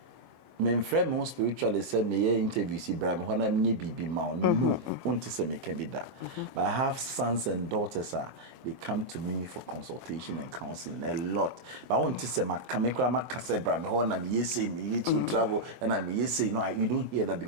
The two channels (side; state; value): left; late; 23 ms